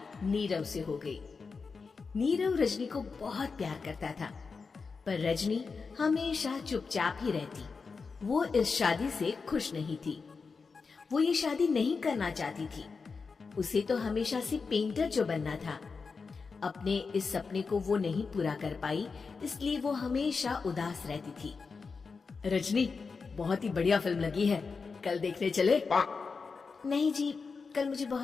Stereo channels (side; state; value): right; quieter; 4.8 dB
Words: नीरव से हो गई। नीरव रजनी को बहुत प्यार करता था, पर रजनी हमेशा चुपचाप ही रहती। वो इस शादी से खुश नहीं थी। वो ये शादी नहीं करना चाहती थी। उसे तो हमेशा से पेंटर जो बनना था। अपने इस सपने को वो नहीं पूरा कर पाई, इसलिए वो हमेशा उदास रहती थी। रजनी, बहुत ही बढ़िया फिल्म लगी है, कल देखने चले? नहीं जी, कल मुझे